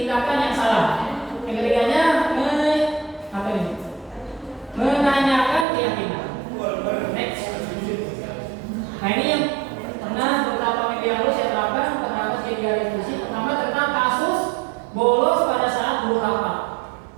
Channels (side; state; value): left; drops out; at 5.7 s